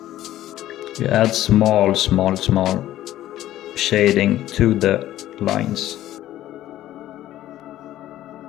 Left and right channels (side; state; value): right; quieter; 13.7 dB